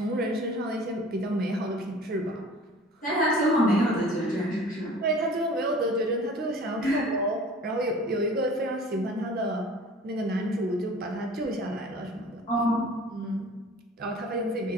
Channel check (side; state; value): both; normal; correlation 0.45